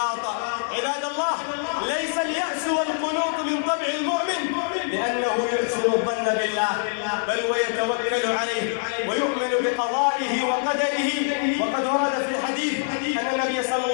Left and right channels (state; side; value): silent; right; 62 dB below the other